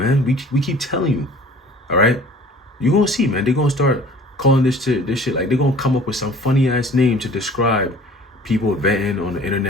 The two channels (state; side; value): normal; both; correlation 0.48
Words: We keep telling you. All right? You're going to see, man. They're going to start calling this shit. Like, they're going to come up with some funny ass name to describe people venting on the